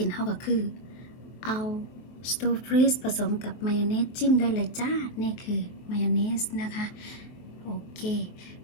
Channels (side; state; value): right; late; 23 ms